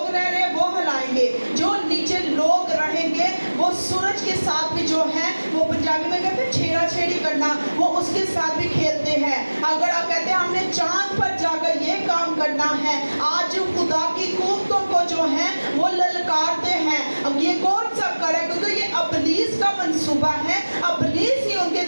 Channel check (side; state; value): both; inverted; correlation -1.00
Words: रह रहे हैं वो हिलाएंगे। जो नीचे लोग रहेंगे वो सूरज के साथ भी जो है, वो पंजाबी में कहते हैं छेड़ा छेड़ी करना, वो उसके साथ भी खेलते हैं। अगर आप कहते हैं हमने चांद पर जाकर ये काम करना है, आज खुदा की कुव्वतों को जो है वो ललकारते हैं। अब ये कौन सब करे? क्योंकि ये इब्लीस का मंसूबा है। इब्लीस ही उनके